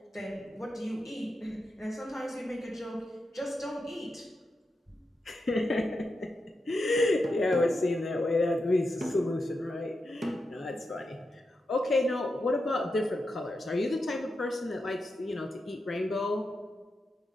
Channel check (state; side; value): normal; both; correlation 0.88